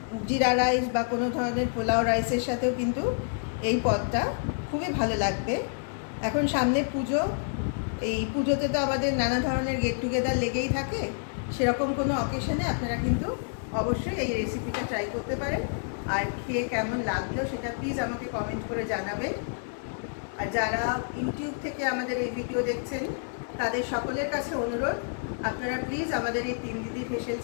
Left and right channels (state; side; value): silent; right; digital silence